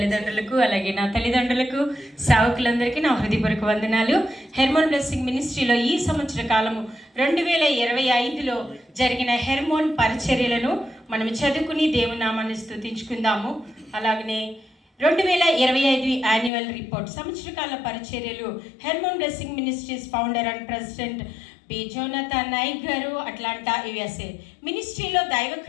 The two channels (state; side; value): drops out; right; at 16.5 s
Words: అలాగే నా తల్లిదండ్రులకు, సేవకులందరికీ నా హృదయపూర్వక వందనాలు. హెర్మోన్ బ్లెస్సింగ్ మినిస్ట్రీలో ఈ సంవత్సర కాలము 2025లో జరిగిన హెర్మోన్ పరిచర్యలను మనం చదువుకుని దేవుని నామాన్ని స్తుతించుకుందాము. అలాగనే 2025 యాన్యువల్ రిపోర్ట్, సంవత్సరకాల పరిచర్యలు, Hermon blessing ministries founder and president P Jonathan Nayak గారు, అట్లాంటా USA. మినిస్ట్రీలో